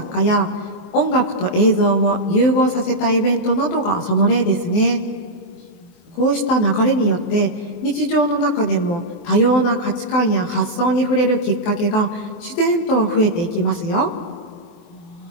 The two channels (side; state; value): right; late; 23 ms